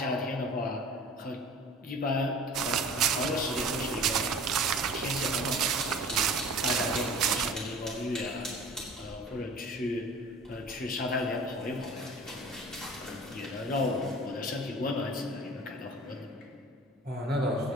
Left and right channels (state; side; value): normal; both; correlation 0.43